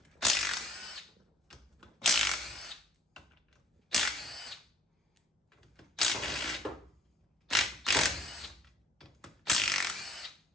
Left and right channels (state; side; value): normal; both; correlation 0.58